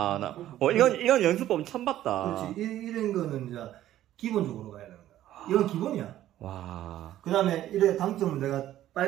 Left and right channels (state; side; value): quieter; left; 13.1 dB